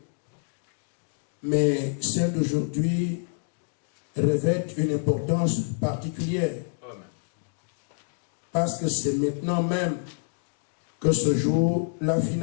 Mais celles d'aujourd'hui revêtent une importance particulière. Parce que c'est maintenant même que se joue la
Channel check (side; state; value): right; silent; digital silence